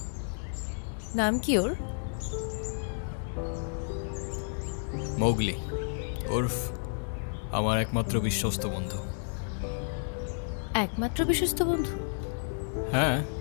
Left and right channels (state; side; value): silent; right; digital silence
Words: নাম কি ওর? মৌগলি, ওরফ আমার একমাত্র বিশ্বস্ত বন্ধু। একমাত্র বিশ্বস্ত বন্ধু? হ্যাঁ,